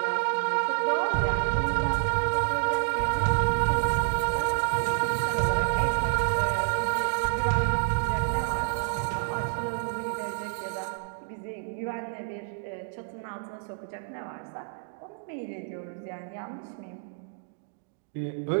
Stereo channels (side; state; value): left; silent; digital silence